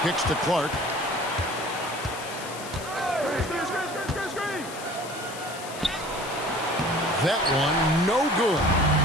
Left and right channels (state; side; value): noise; left; hiss, 13 dB below the sound